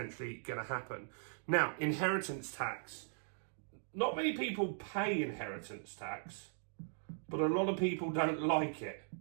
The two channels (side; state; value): left; silent; digital silence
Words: going to happen. Now, inheritance tax. Not many people pay inheritance tax, but a lot of people don't like it.